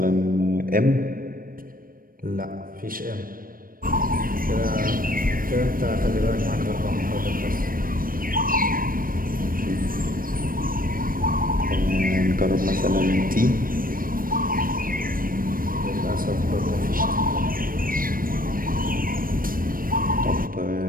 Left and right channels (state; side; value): late; left; 0.41 ms